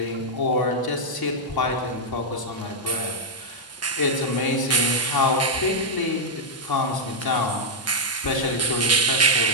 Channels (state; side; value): normal; both; correlation -0.05